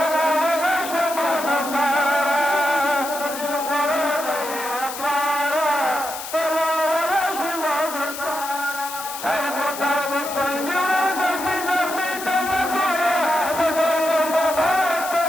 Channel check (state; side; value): noise; left; hiss, 9 dB below the sound